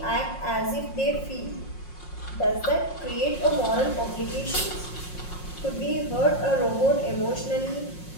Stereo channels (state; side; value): late; right; 5.6 ms